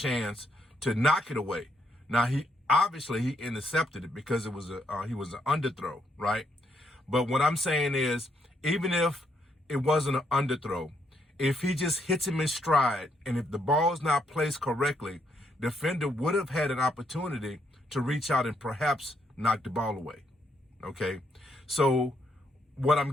to knock it away. Now, he intercepted it because he was an underthrow, right? But what I'm saying is, even if it wasn't an underthrow, if he just hits him in stride, and if the ball is not placed correctly, defender would have had an opportunity to reach out and perhaps knock the ball away, okay? So what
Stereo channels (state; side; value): normal; both; correlation 0.75